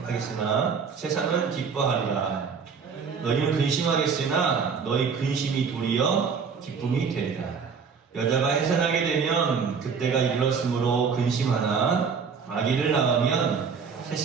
세상은 기뻐하리라. 너희는 근심하겠으나 너희 근심이 도리어 기쁨이 되리라. 여자가 해산하게 되면 그때가 이르렀으므로 근심하나 아기를 낳으면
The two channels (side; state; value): left; quieter; 5.9 dB